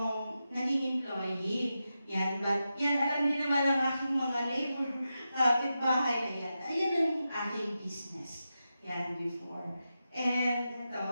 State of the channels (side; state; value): both; inverted; correlation -0.89